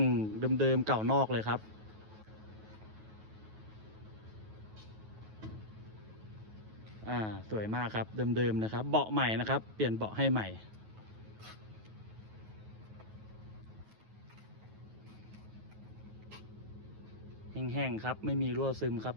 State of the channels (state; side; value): late; left; 9.3 ms